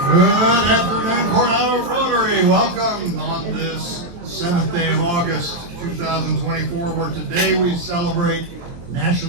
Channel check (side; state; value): left; late; 23 ms